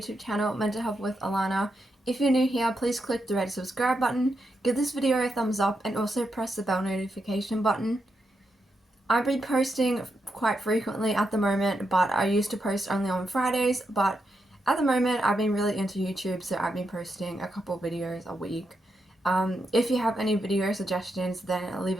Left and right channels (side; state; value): both; normal; correlation 0.84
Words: channel, Mental Health with Alana. If you're new here, please click the red subscribe button, give this video a thumbs up, and also press the bell notification button. I've been posting quite frequently at the moment, but I used to post only on Fridays, but at the moment I've been really into YouTube, so I've been posting a couple videos a week. If you have any video suggestions, then leave